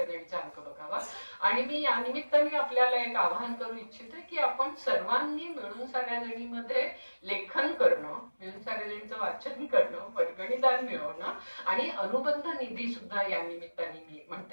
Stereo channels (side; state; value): both; inverted; correlation -1.00